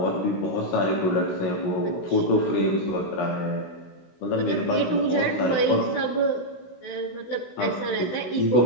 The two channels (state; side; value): late; right; 16 ms